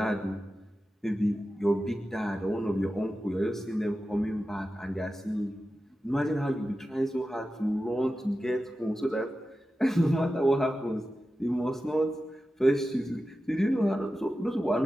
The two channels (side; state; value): both; normal; correlation 0.93